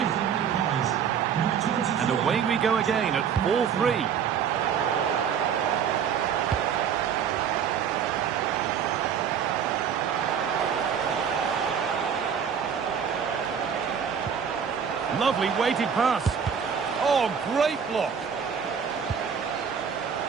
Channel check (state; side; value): quieter; left; 7.5 dB